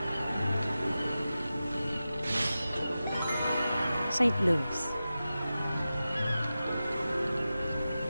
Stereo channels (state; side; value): inverted; both; correlation -0.94